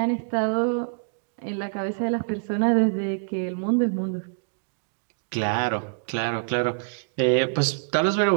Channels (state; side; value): silent; left; digital silence